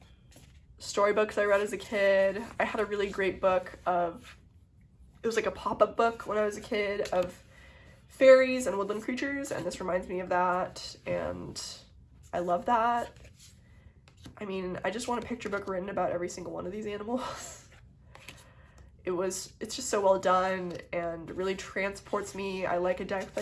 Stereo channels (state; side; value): identical; both; correlation 1.00